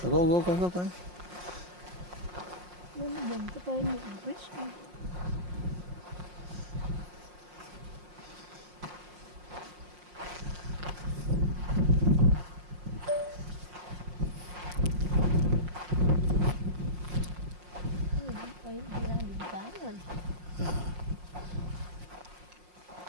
Nó dùng cái tên như Chris thôi. Đi ra đường cái rồi.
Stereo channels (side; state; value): left; late; 5.6 ms